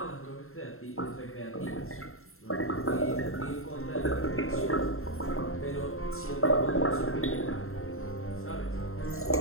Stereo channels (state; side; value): late; right; 0.61 ms